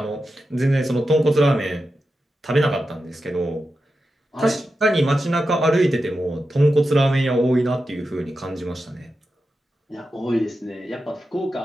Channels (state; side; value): normal; both; correlation 0.90